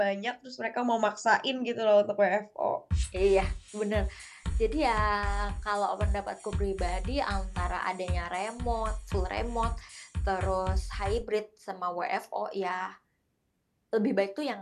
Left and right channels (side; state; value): both; identical; correlation 1.00